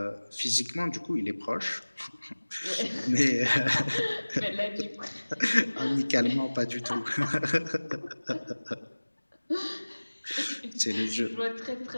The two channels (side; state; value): both; inverted; correlation -1.00